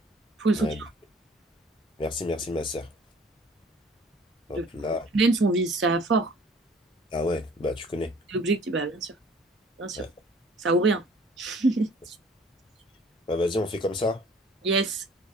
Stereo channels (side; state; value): both; normal; correlation 0.53